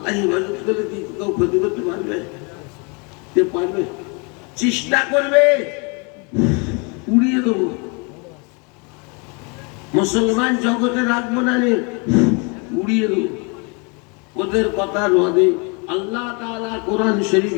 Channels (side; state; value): right; quieter; 32.5 dB